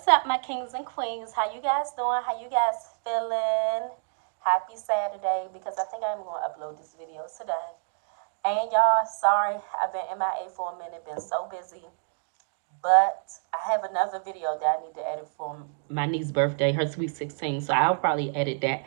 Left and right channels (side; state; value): left; silent; digital silence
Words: up, my kings and queens? How you guys doing? How you guys feeling? Happy Saturday, because I think I'm going to upload this video today. And y'all, sorry, I've been MIA for a minute, been so busy. But I have another video that I need to edit for my niece's birthday, her sweet 16. So I'll probably edit that